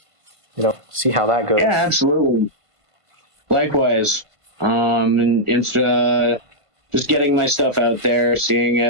see how that goes. Yeah, absolutely. Likewise. And it's just getting my stuff out there, seeing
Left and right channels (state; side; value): late; left; 1.5 ms